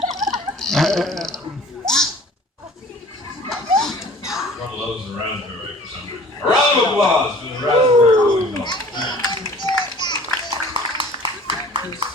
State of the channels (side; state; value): both; normal; correlation 0.48